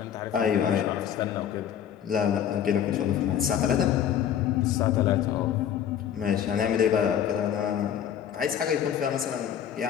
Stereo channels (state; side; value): quieter; right; 9.4 dB